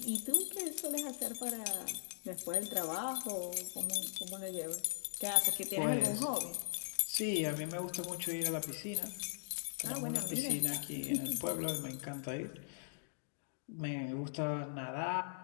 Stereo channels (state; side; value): silent; right; digital silence